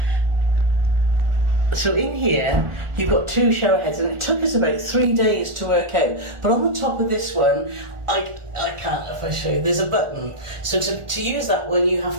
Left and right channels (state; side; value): late; left; 1.4 ms